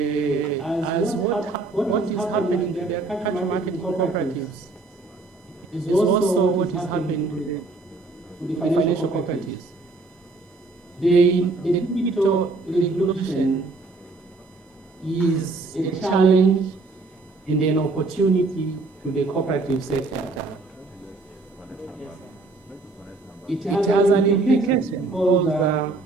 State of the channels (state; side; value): quieter; left; 3.5 dB